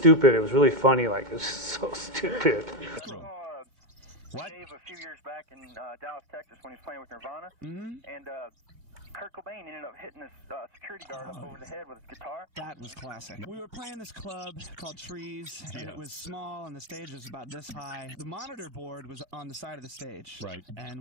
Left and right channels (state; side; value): late; left; 2.2 ms